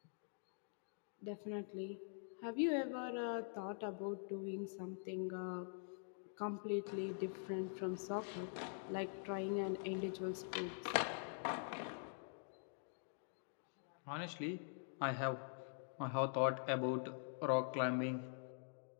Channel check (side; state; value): right; silent; digital silence